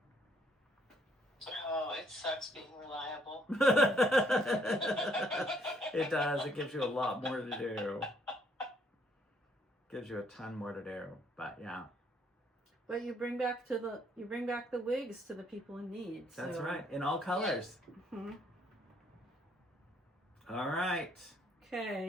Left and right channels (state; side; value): normal; both; correlation 0.68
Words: Oh, it sucks being reliable. It does. It gives you a lot more to do. Gives you a ton more to do. But yeah. But you bring back the wigs to the people in need. That's right. In all colors. Mm-hmm. All right.